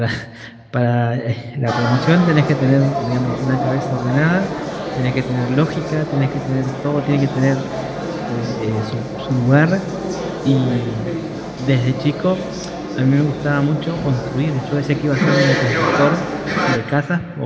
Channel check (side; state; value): both; identical; correlation 1.00